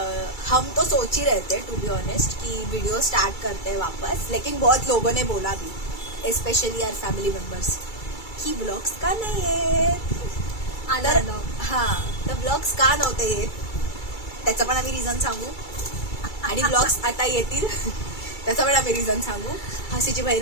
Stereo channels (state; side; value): late; right; 2.3 ms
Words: हम तो सोच ही रहे थे टू बी ऑनेस्ट कि वीडियो स्टार्ट करते हैं वापस, लेकिन बहुत लोगों ने बोला भी, स्पेशली आवर फॅमिली मेंबर्स, की ब्लॉग्स का नाही येत। तर हां, तर ब्लॉग्स का नव्हते येत त्याचं पण आम्ही रिझन सांगू, आणि ब्लॉग्स आता येतील त्याचं पण आम्ही रिझन सांगू। हसीची बहीण